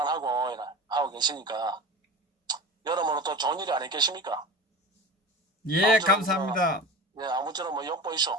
하고 계시니까 여러모로 또 좋은 일이 아니겠습니까? 예, 감사합니다. 아무쪼록 욕보이소.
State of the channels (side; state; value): both; normal; correlation 0.33